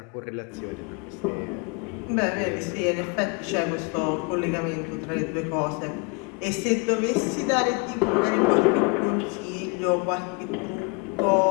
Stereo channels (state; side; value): quieter; right; 30.1 dB